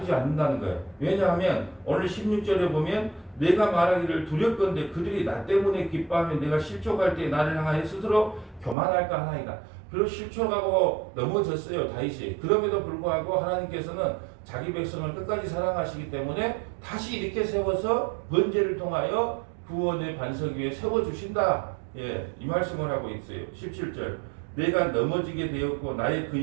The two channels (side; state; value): left; drops out; at 8.8 s